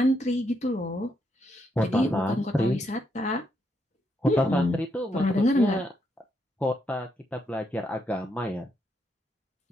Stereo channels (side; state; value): both; normal; correlation 0.78